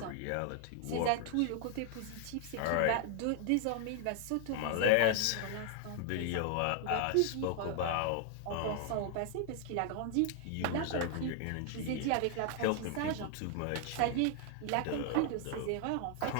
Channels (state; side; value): different; both; correlation 0.00